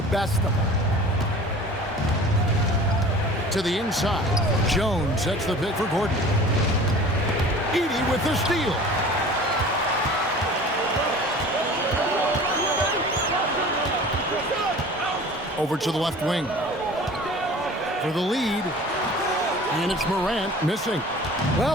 best of them. To the inside, Jones sets the pick for Gordon. Edey with the steal. Over to the left wing for the lead, and it's Morant missing.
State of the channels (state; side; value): normal; both; correlation 0.43